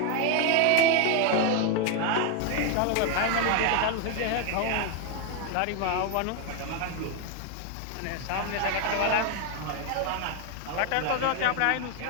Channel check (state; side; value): different; both; correlation 0.01